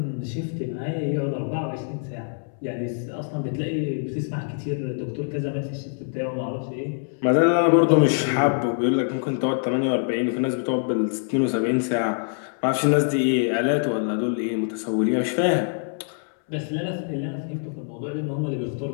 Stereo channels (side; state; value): right; silent; 62 dB below the other